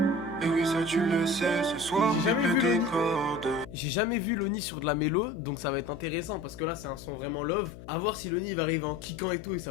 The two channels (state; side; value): noise; left; hum, 15 dB below the sound